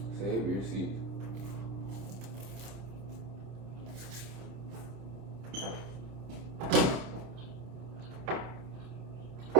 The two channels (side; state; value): left; late; 27 ms